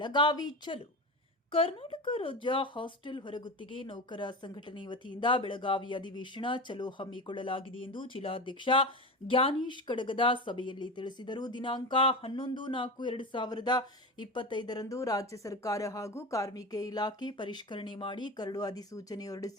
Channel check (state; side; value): normal; both; correlation 0.25